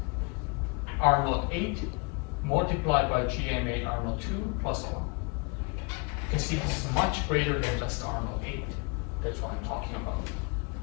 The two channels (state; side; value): quieter; right; 32.0 dB